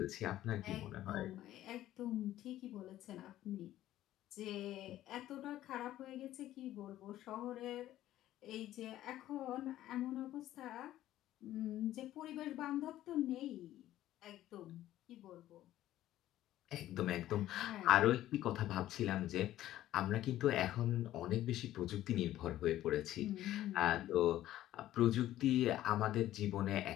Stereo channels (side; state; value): right; quieter; 13.7 dB